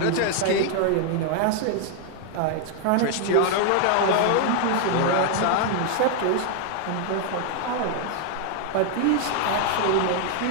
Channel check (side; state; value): both; different; correlation 0.00